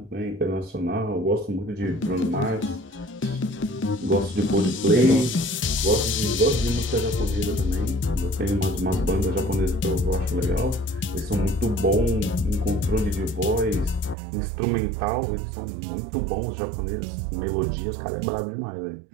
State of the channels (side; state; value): left; drops out; at 14.2 s